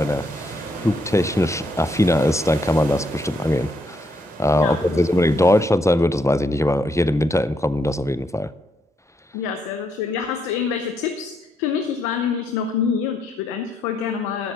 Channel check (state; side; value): normal; both; correlation 0.75